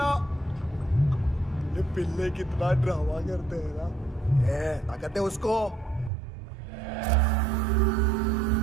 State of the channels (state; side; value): drops out; left; at 6.1 s